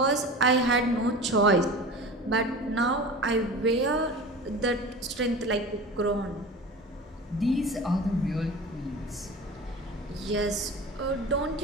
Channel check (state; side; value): normal; both; correlation 0.35